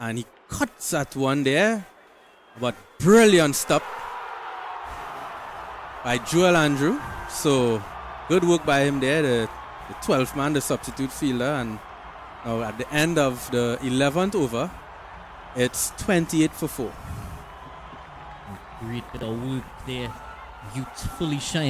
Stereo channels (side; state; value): both; identical; correlation 1.00